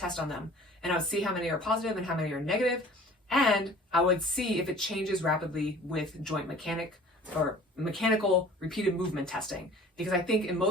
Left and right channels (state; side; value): normal; both; correlation 0.47